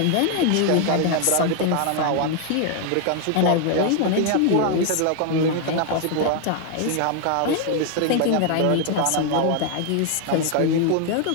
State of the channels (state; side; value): different; both; correlation 0.00